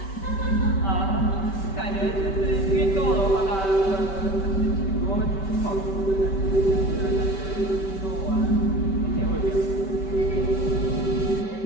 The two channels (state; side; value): late; right; 5.2 ms